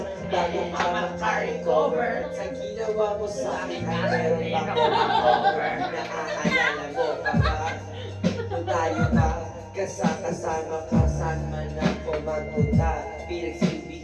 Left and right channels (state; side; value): identical; both; correlation 1.00